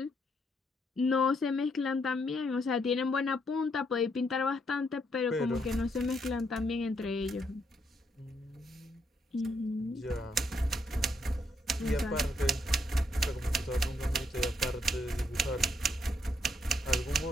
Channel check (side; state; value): both; normal; correlation 0.75